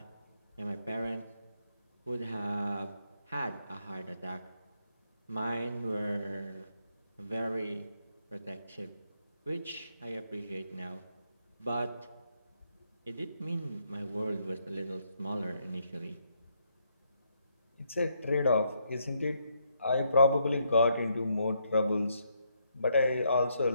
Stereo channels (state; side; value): inverted; both; correlation -0.76